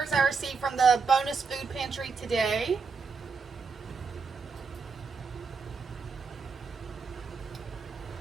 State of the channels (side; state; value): left; quieter; 5.0 dB